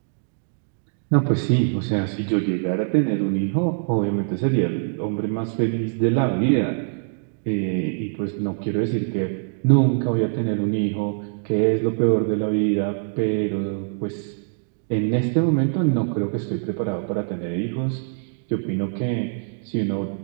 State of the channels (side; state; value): left; silent; digital silence